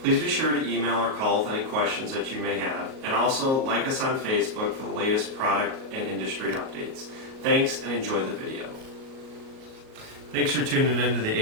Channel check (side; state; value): left; late; 38 ms